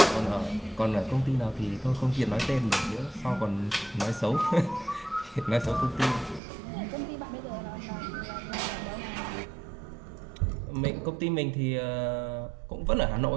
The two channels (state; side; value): drops out; left; at 6.4 s